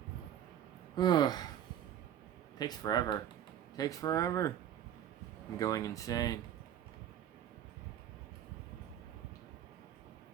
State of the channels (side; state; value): left; quieter; 10.4 dB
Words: Ugh. Takes forever. Takes forever. I'm going insane.